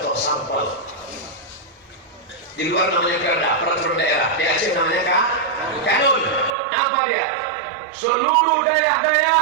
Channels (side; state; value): left; drops out; at 6.6 s